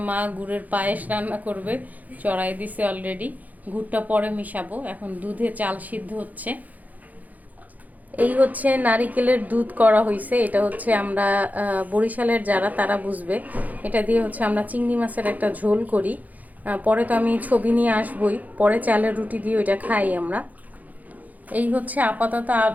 মা গুড়ের পায়েস রান্না করবে, চড়াই দিছে অলরেডি। গুড়টা পরে মিশাবো, এখন দুধে চাল সিদ্ধ হচ্ছে। এই হচ্ছে নারিকেলের দুধ করা হয়েছে। এটা হচ্ছে আমরা বরিশালের যারা তারা বুঝবে। এটা দিয়ে হচ্ছে আমরা চিংড়ি মাছের একটা ঝোল করি। পরে তো আমি ছবি নিয়ে আসবই, পরে চালের রুটি দিয়ে ওইটা খাই আমরা। এই হচ্ছে আপাতত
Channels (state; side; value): late; left; 0.079 ms